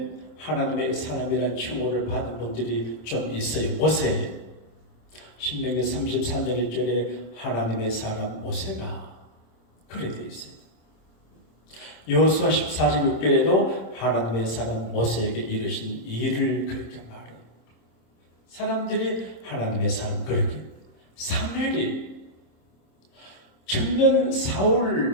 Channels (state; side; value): late; right; 26 ms